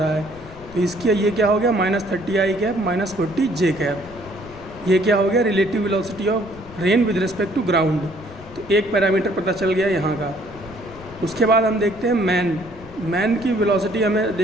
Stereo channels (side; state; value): left; noise; rumble, 19 dB below the sound